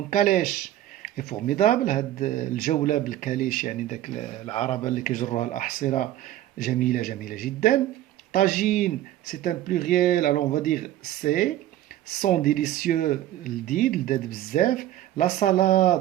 calèche est formidable, هاد الجولة بالكاليش يعني داك العربة اللي كيجروها الأحصرة جميلة جميلة جدا. Tagine, c'est un pluriel, alors on va dire c'est. Sont délicieux, l'did bzef. La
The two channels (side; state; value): left; quieter; 13.5 dB